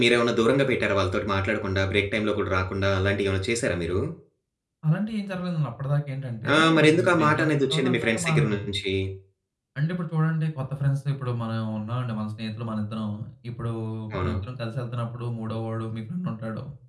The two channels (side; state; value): both; identical; correlation 1.00